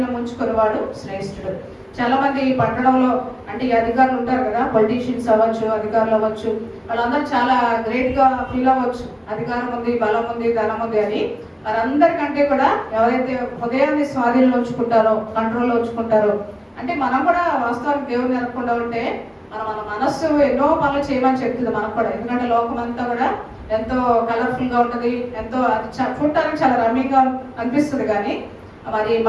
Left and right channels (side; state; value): both; identical; correlation 1.00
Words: ఉంచుకుని వాడు శ్రేష్ఠుడు. చాలా మంది ఈ పట్టణంలో అంటే ఈ అధికారులు ఉంటారు కదా, పొలిటీషియన్స్ అవ్వచ్చు, అధికారులు అవ్వచ్చు, వాళ్ళందరూ చాలా గ్రేట్ గా ఫీల్ అవ్వచ్చు. అధికారం ఉంది, బలం ఉంది, ధనం ఉంది అని. వారందరికంటే కూడా ఎవరైతే హృదయాన్ని స్వాధీనంలో ఉంచుకుంటారో, కంట్రోల్లో ఉంచుకుంటారో, అంటే మనం కూడా వాస్తవానికి దేవుని నెరకుండా ఉంటే మన మనస్సు ఎన్నో పనులు చేయమని చెప్తుంది మనకు కూడా. ఎందుకంటే లోకం అంతా కూడా ఎంతో కలర్ఫుల్ గా ఉంటుంది, ఎంతో చూడటానికి చాలా రమ్యంగా అనిపిస్తుంది. కానీ మరి